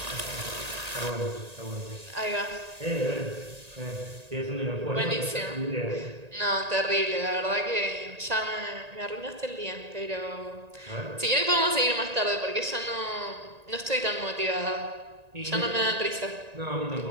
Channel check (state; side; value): late; left; 1.9 ms